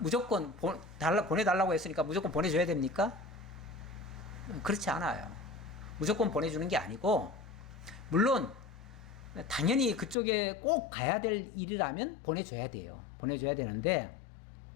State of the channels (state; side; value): drops out; right; at 10.2 s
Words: 무조건 보내달라고 했으니까 무조건 보내줘야 됩니까? 그렇지 않아요. 무조건 보내주는 게 아니고, 물론 당연히 그쪽에 꼭 가야 될 일이라면 보내줘야 돼요. 보내줘야 되는데,